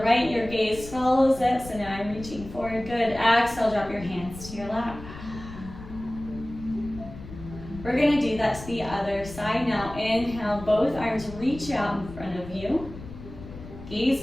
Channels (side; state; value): left; noise; rumble, 14 dB below the sound